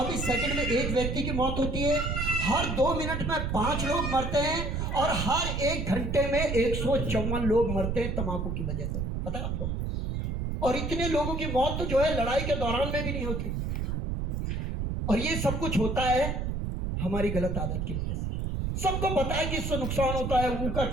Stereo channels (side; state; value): right; noise; rumble, 2 dB below the sound